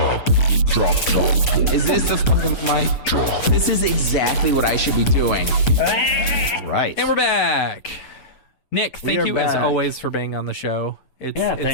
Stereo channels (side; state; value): right; late; 8.3 ms